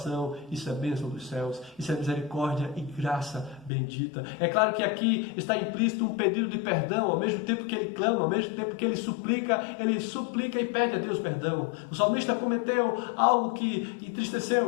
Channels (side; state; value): right; drops out; at 3.7 s